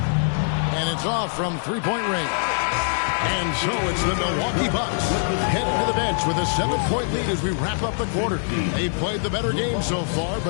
it's off from 3-point range. And so it's the Milwaukee Bucks heading to the bench with a 7-point lead as we wrap up the quarter. They've played the better game so far,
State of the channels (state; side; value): silent; right; digital silence